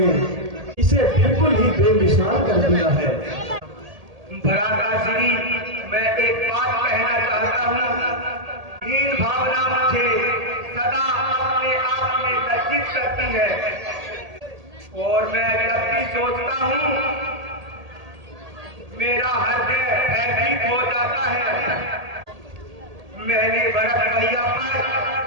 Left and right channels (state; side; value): late; left; 1.8 ms